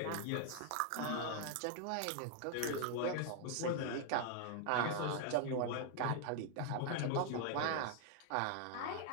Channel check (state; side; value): different; both; correlation 0.00